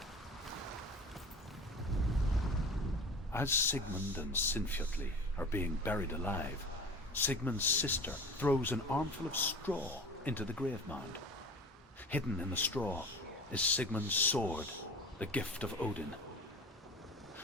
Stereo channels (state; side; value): normal; both; correlation 0.37